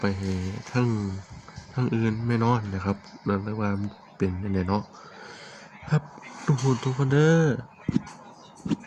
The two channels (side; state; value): both; identical; correlation 1.00